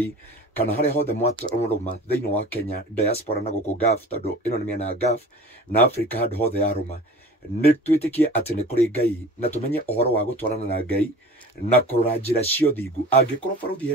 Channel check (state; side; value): normal; both; correlation 0.40